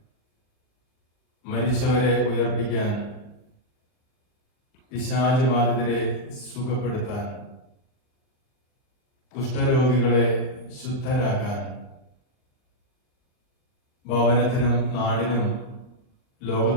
മരിച്ചവരെ ഉയർപ്പിക്കാൻ, പിശാച് ബാധിതരെ സുഖപ്പെടുത്താൻ, കുഷ്ഠരോഗികളെ ശുദ്ധരാക്കാൻ, ഭവനത്തിനും നാടിനും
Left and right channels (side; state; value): right; late; 39 ms